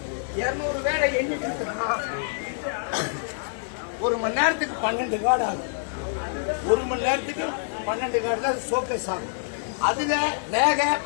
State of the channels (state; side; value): silent; right; digital silence